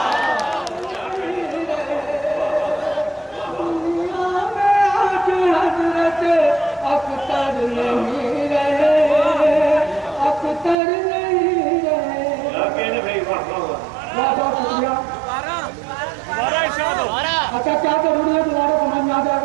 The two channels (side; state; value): left; drops out; at 10.8 s